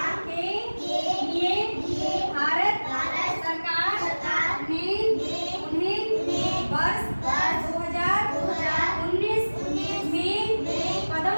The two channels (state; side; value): inverted; both; correlation -1.00